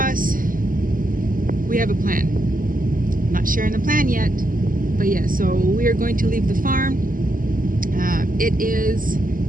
we have a plan. I'm not sharing the plan yet, but yeah, so we are going to leave the farm. It is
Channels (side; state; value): left; late; 0.41 ms